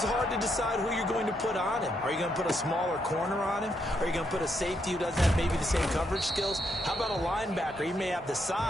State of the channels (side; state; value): both; normal; correlation 0.78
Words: hard to decide who you're going to put on him. Are you going to put a smaller corner on him? Are you going to put a safety who doesn't have maybe the same coverage skills? How about a linebacker? He may have the